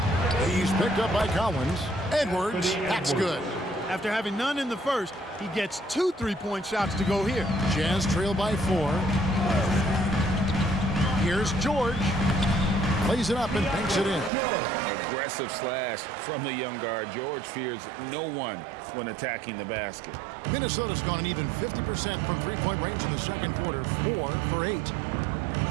He's picked up by Collins. Edwards, that's good. After having none in the first, he gets 2 3-point shots to go here. Jazz trail by 4. Here's George. Plays it up and banks it in. Aggressive slash from the young guard. George fears no one when attacking the basket. Minnesota's gone an even 50% from 3-point range in the second quarter. 4 for 8.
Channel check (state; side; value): drops out; left; at 14.3 s